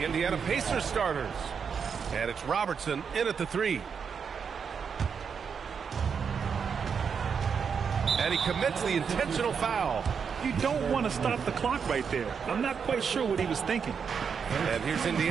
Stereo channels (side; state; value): left; quieter; 6.5 dB